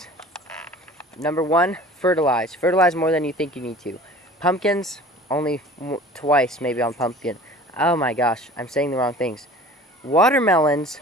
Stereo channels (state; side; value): normal; both; correlation 0.44